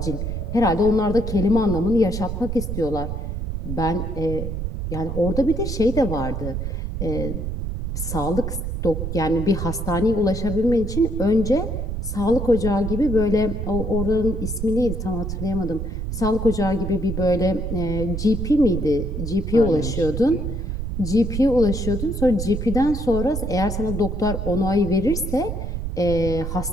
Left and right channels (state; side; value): noise; right; rumble, 4 dB below the sound